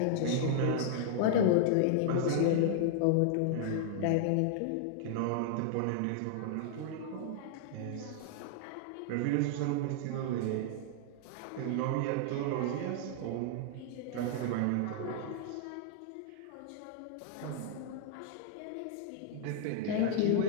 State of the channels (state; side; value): different; both; correlation -0.01